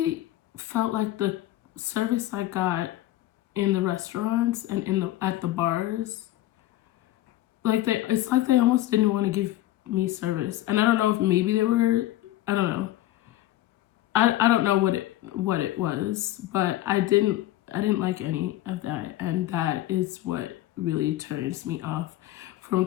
felt like the service I got in the restaurants and at the bars, like it's like they almost didn't want to give me service. And I don't know if maybe they were, I don't know. I don't know what it was, but I didn't like any of that, and that is what really turns me off from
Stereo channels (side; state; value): right; quieter; 14.9 dB